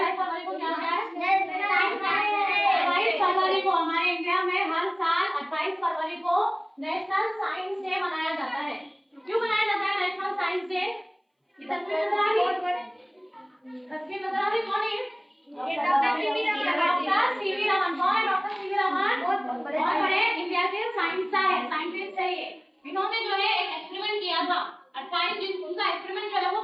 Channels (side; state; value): both; identical; correlation 1.00